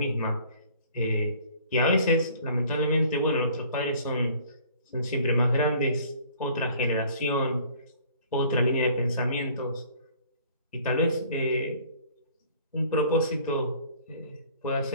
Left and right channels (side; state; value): both; inverted; correlation -0.53